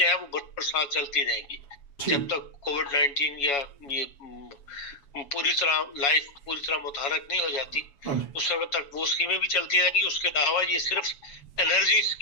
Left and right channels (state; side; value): late; right; 7.1 ms